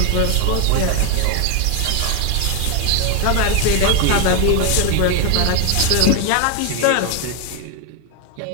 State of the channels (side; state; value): both; different; correlation 0.01